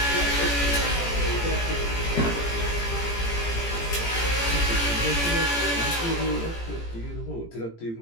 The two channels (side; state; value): right; late; 18 ms